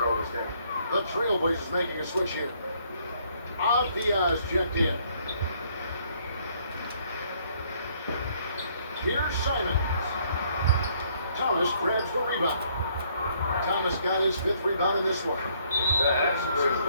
down. The Trailblazers making a switch here. Diaz checked in. Here's Simons. Thomas grabs the rebound. Thomas got his 5th rebound in this one. That's two,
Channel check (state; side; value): inverted; both; correlation -0.66